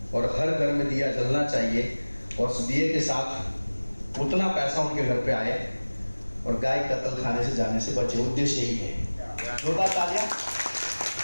और हर घर में दिया जलना चाहिए, और उस दिए के साथ उतना पैसा उनके घर पे आए और गाय कत्ल खाने से जाने से बचे। उद्देश्य यही है। जोरदार तालियां।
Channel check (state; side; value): inverted; both; correlation -1.00